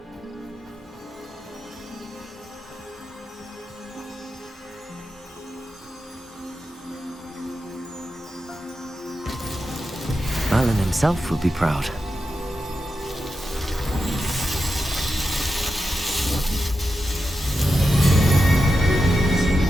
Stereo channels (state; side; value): normal; both; correlation 0.89